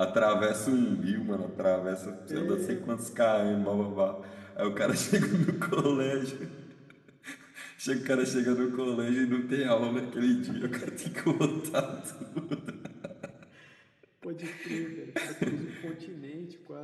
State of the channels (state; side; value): identical; both; correlation 1.00